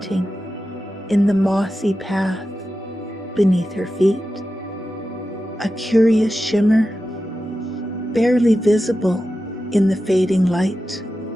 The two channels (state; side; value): normal; both; correlation 0.92